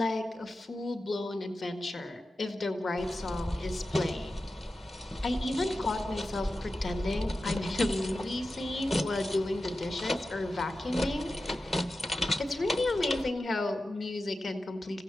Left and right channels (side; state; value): both; normal; correlation 0.93